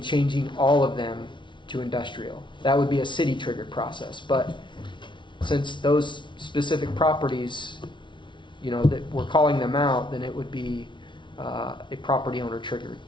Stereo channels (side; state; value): right; late; 0.24 ms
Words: changing all of them to industrial. That would be a city-triggered process. But since those specific properties, that we're calling them out, then it would be a property owner triggered